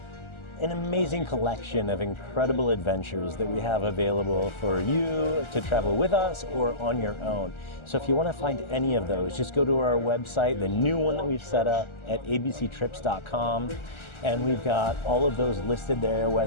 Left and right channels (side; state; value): right; late; 1.4 ms